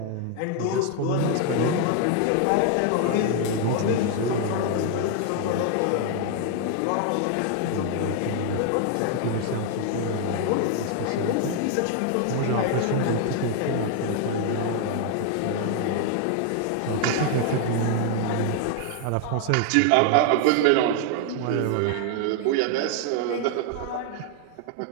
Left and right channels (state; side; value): different; both; correlation 0.00